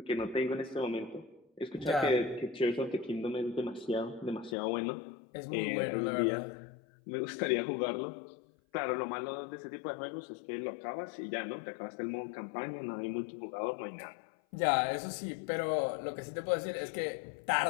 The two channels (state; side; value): drops out; right; at 4.5 s